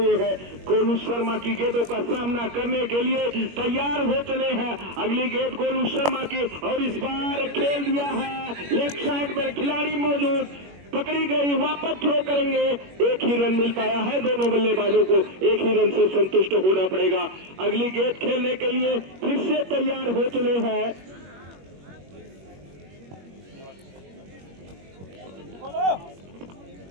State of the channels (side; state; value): left; late; 21 ms